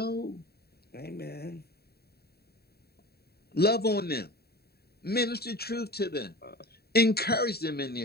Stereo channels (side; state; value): right; late; 0.46 ms